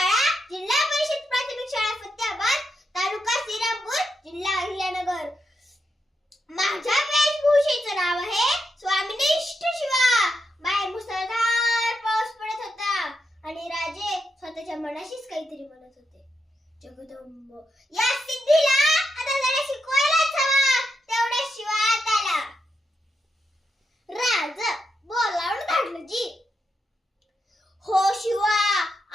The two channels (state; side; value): normal; both; correlation 0.83